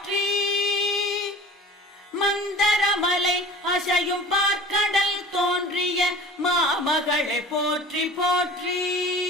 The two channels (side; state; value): both; normal; correlation 0.40